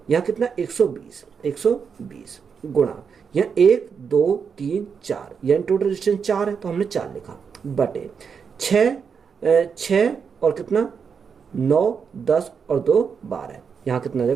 यहाँ कितना, 120 गुणा यहाँ 1 2 3 4, यानी टोटल डिस्टेंस 4 है तो हमने 4 लिखा, बटे 6 और कितना 9 10 और 2 12, यहाँ कितना आ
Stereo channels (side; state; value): left; quieter; 6.3 dB